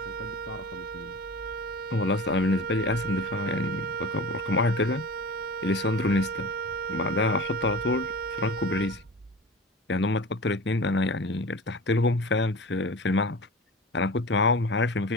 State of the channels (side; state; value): both; normal; correlation 0.34